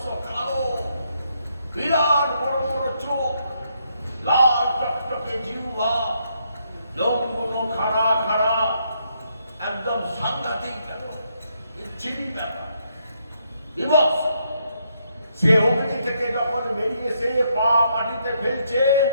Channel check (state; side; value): inverted; both; correlation -0.75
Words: কালো, বিরাট বড় বড় চোখ, লাল টকটকে জিহ্বা, লোমগুলো খাড়া খাড়া, একদম সাংঘাতিক ব্যাপার, বিচ্ছিরি ব্যাপার, বিভৎস। সে অগ্নি থেকে যখন যখন বেরিয়ে এসে পা মাটিতে ফেলছে,